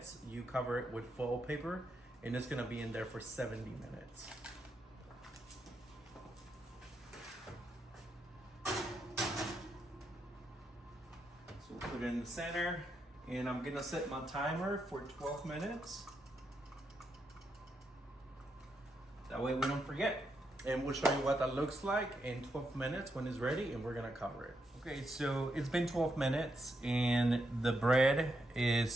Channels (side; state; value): both; normal; correlation 0.82